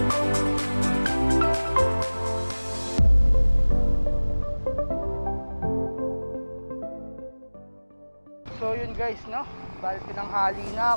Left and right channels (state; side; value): inverted; both; correlation -1.00